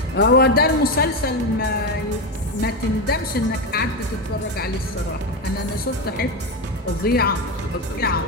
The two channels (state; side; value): normal; both; correlation 0.14